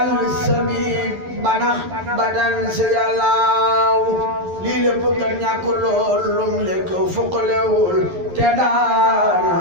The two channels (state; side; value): late; left; 11 ms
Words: sabib banax badan si yàllaaw lii lépp kat ñàkk lool lum lekk fuqalewul te